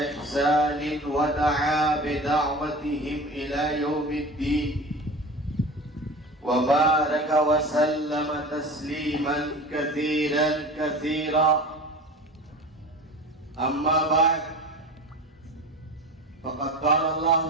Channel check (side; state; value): both; normal; correlation 0.34